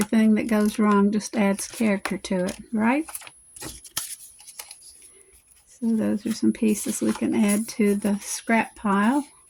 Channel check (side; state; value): both; identical; correlation 1.00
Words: that goes wrong just adds character to it, right? So those are some pieces we can add to the scrap pile.